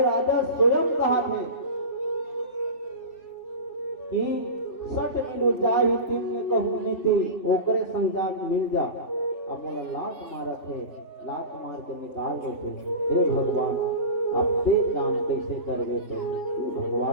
राजा स्वयं कहा थे कि सट मिलो जाहि तिमने कहू नीति ओकरे संजा मिल जा। अब मोला लात मारा थे, लात मार के निकाल गए थे। हे भगवान अब ते जान कैसे करवे थे।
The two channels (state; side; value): late; right; 3.1 ms